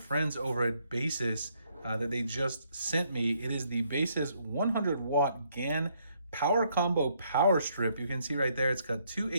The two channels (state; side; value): inverted; both; correlation -0.71